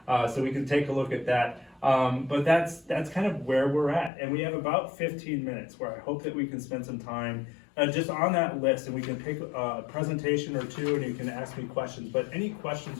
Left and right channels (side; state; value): right; drops out; at 4.1 s